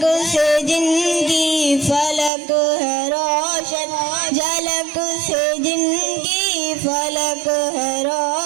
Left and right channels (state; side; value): drops out; left; at 2.3 s